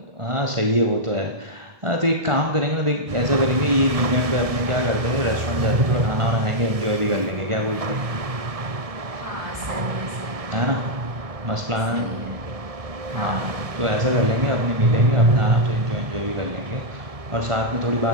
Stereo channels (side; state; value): left; late; 1.6 ms